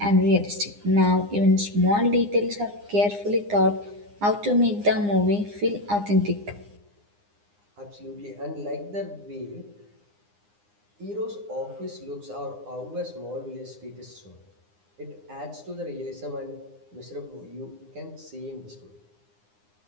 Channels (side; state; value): left; late; 9.8 ms